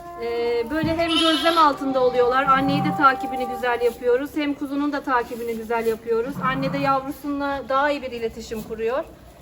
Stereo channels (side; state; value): both; identical; correlation 1.00